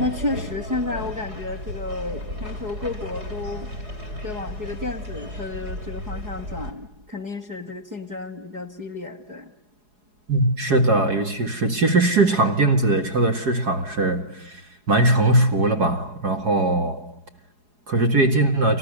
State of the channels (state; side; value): late; left; 4.8 ms